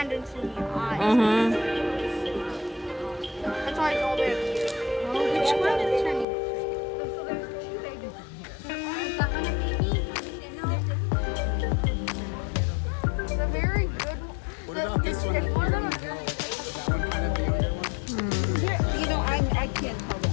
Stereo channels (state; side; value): drops out; right; at 6.2 s